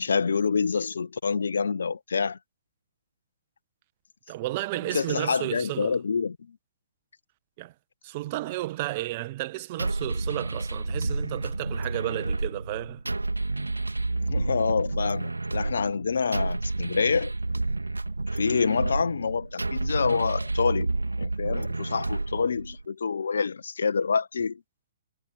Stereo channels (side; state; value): both; inverted; correlation -0.83